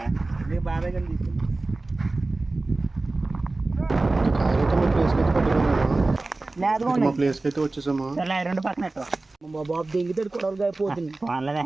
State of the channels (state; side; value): quieter; left; 3.2 dB